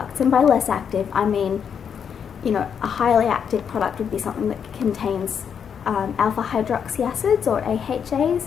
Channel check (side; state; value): right; quieter; 7.4 dB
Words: And by less active, I mean, you know, a highly active product would be something that contains alpha hydroxy acids, or AHAs,